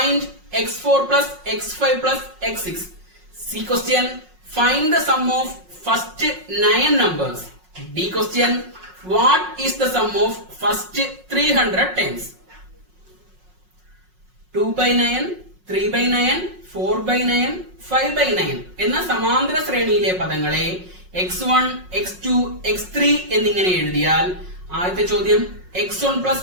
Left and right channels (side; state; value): left; late; 5.5 ms